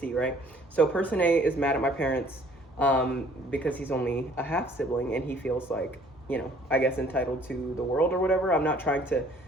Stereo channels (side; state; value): both; normal; correlation 0.57